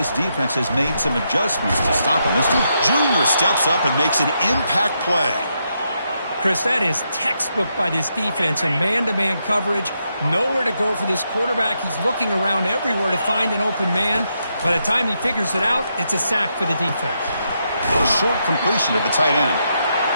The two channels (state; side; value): inverted; both; correlation -0.81